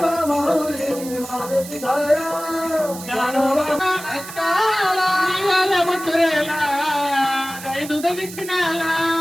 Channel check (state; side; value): noise; right; hiss, 13 dB below the sound